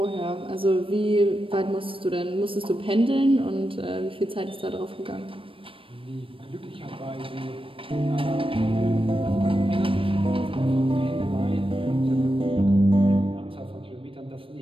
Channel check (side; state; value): left; late; 0.26 ms